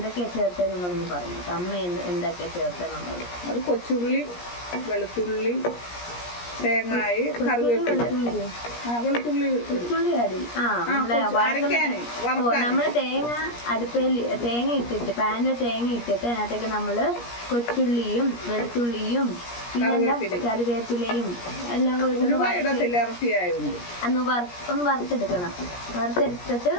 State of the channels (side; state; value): right; late; 17 ms